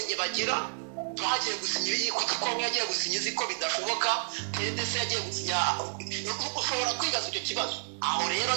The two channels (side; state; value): left; silent; 58 dB below the other